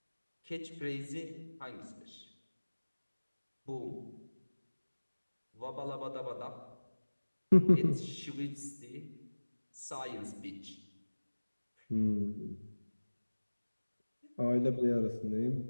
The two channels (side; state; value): both; inverted; correlation -1.00